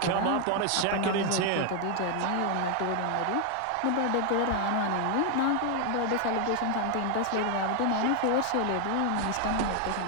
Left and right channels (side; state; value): both; different; correlation 0.00